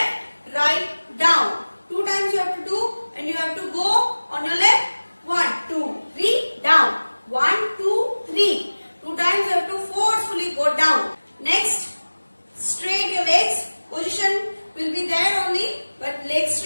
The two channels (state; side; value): inverted; both; correlation -1.00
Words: right, down. 2 times you have to do and you have to go on your left. 1, 2, 3, down. 1, 2, 3. 2 times you have to forcefully go down. Next, straight your legs. Position will be there only, but legs